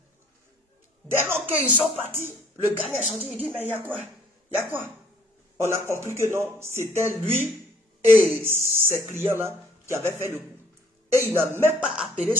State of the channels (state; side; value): normal; both; correlation 0.60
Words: Dès lors qu'ils sont partis, le gagnant est sorti, il dit, mais il y a quoi? Il y a quoi? On a compris que non, c'était lui et ses clients-là qui avaient fait le coup. Et il n'a même pas appelé